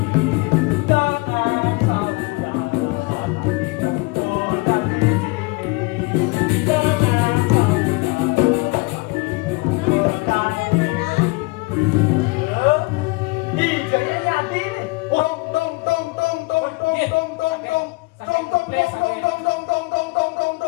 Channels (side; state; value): right; quieter; 25.6 dB